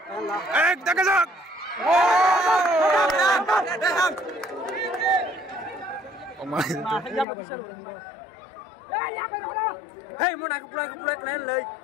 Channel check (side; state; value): right; drops out; at 7.2 s